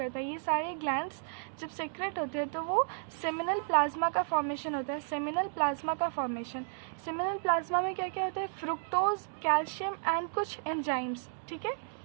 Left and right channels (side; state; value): left; silent; 56 dB below the other